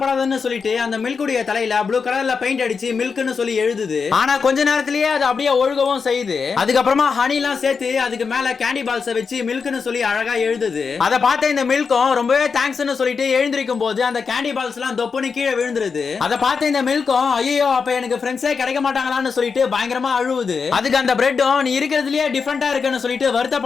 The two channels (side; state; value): right; quieter; 5.4 dB